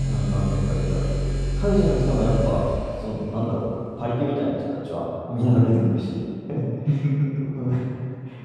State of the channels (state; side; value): identical; both; correlation 1.00